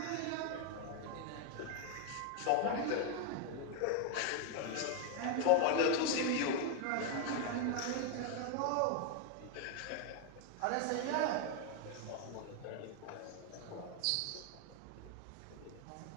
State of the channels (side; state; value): both; different; correlation 0.00